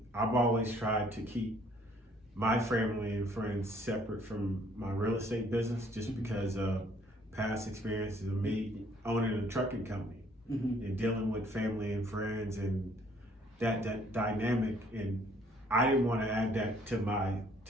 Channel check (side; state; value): both; normal; correlation 0.61